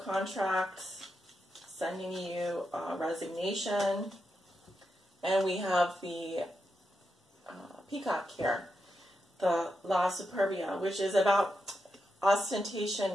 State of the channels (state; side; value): normal; both; correlation 0.86